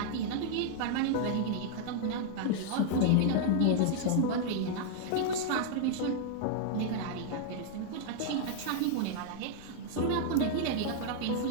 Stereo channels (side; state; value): both; different; correlation -0.01